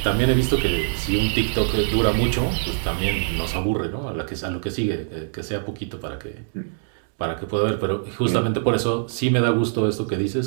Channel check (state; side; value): silent; left; digital silence